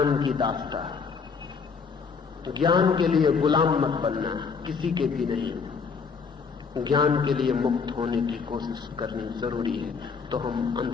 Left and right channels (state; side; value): quieter; right; 5.5 dB